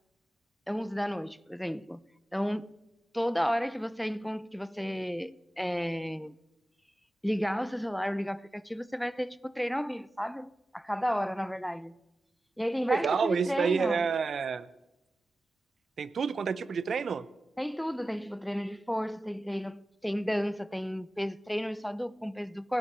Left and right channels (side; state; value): both; normal; correlation 0.94